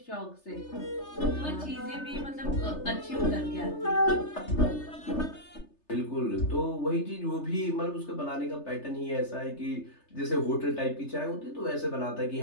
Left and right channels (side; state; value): right; late; 3.3 ms